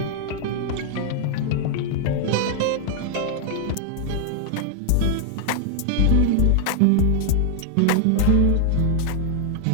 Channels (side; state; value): both; different; correlation 0.00